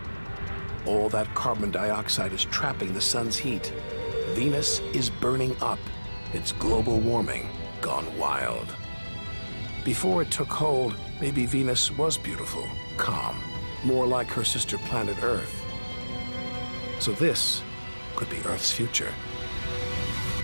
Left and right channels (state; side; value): inverted; both; correlation -1.00